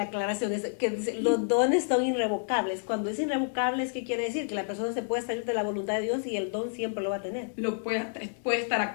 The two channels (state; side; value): silent; right; digital silence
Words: aclaración es que los dones son irrevocables. Cuando es irrevocable, ¿qué quiere decir? Que la persona se puede salir de la voluntad de Dios y el don siempre lo va a tener. Puede estar